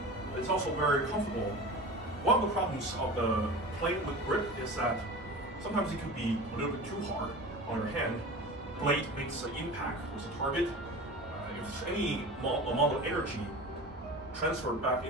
It's also very comfortable. One of the problems of the plain wood grip is that sometimes it could be a little bit too hard on your hand. Blade makes an impact with the target. If any amount of energy transferred back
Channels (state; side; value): normal; both; correlation 0.34